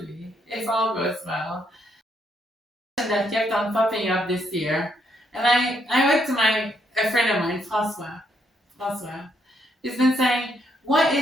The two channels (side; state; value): both; normal; correlation 0.74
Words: if all goes well. That kept on popping up this year, and I went to a friend of mine, François. He's been saying, what